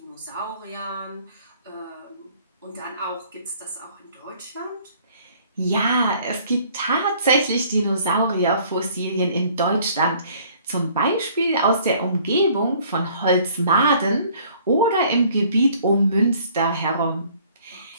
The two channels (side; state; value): both; inverted; correlation -0.57